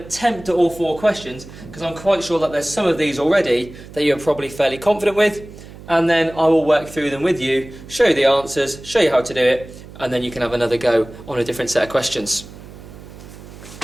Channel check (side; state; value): right; noise; hum, 17 dB below the sound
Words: at all 4 questions, because I'm quite sure that there's some of these already that you're probably fairly confident with, and then I will work through them with you, show you the answers, show you how to do it, and then you can have another go on a different set of questions.